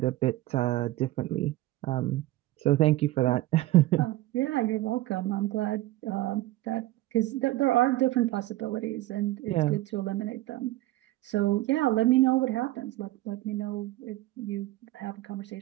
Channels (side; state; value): left; quieter; 16.8 dB